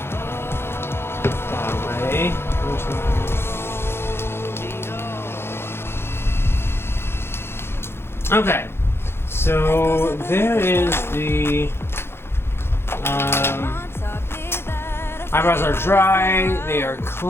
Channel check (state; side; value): late; right; 0.12 ms